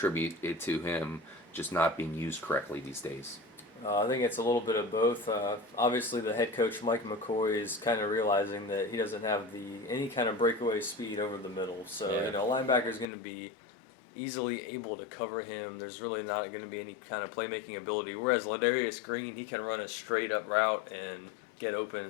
it to him just not being used correctly these days? I think it's a little bit of both. Obviously, the head coach, Mike McCoy, is kind of realizing that he doesn't have any kind of breakaway speed over the middle. So, linebacker is going to be easily able to cover him. There's really not going to be any kind of playmaking ability. Whereas Ledarius Green, he can run a straight up route and get open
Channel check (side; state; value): right; drops out; at 13.1 s